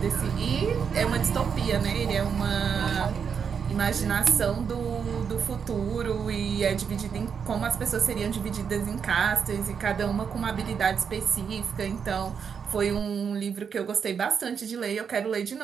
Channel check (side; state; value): left; quieter; 6.8 dB